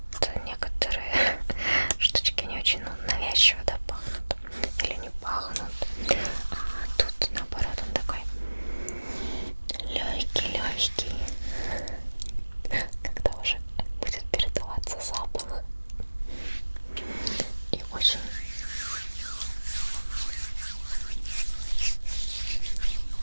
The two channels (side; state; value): both; inverted; correlation -1.00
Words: некоторые штучки не очень навязчиво, да, пахнут или не пахнут. А тут наоборот он такой легкий, когда уже будет передаваться запах. И очень